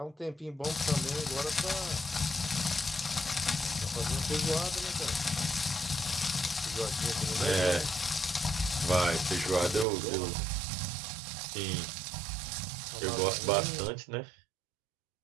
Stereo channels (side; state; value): left; drops out; at 9.9 s